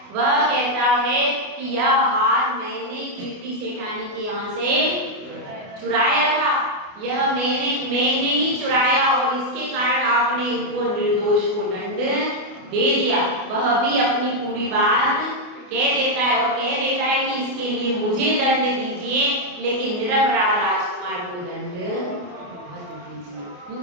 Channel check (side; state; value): left; late; 28 ms